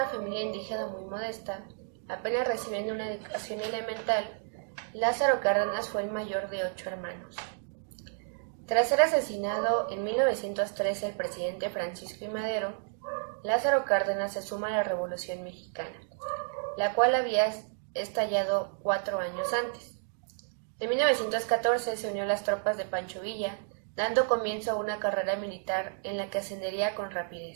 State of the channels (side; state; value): left; silent; digital silence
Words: familia indígena muy modesta, apenas recibiendo una educación elemental, Lázaro Cárdenas fue el mayor de 8 hermanos. Tras ser asesinado en 1913 el presidente Francisco I. Madero, Lázaro Cárdenas se suma a la Revolución Mexicana, la cual había estallado 4 años antes. En 1914 se unió a las tropas de Pancho Villa, dando comienzo a una carrera militar en la que ascendería con